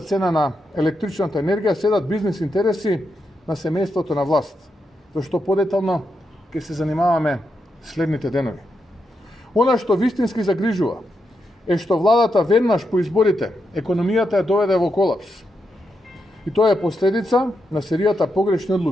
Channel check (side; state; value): both; normal; correlation 0.84